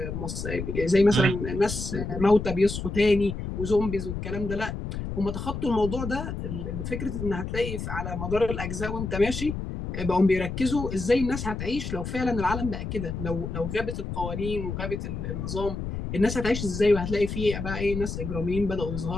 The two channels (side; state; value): left; noise; rumble, 5 dB below the sound